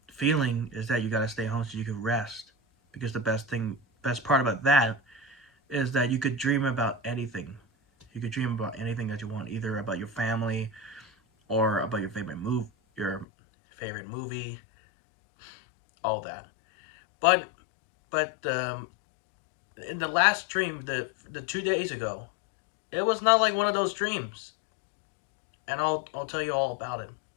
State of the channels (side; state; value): right; drops out; at 13.2 s